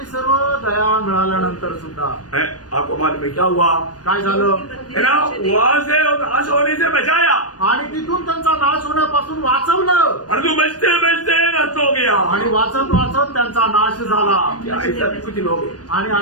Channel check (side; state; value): right; late; 0.69 ms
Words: सर्व दया मिळाल्यानंतर सुद्धा है, आपको मालूम है क्या हुआ काय झालं, है ना, वहां से नाश होने से बचाया आणि तिथून त्यांचा नाश होण्यापासून वाचवलं। परंतु बचते बचते नष्ट हो गया। आणि वाचत वाचत त्यांचा नाश झाला। क्या ऐसा भी कुछ लोग हैं, आणि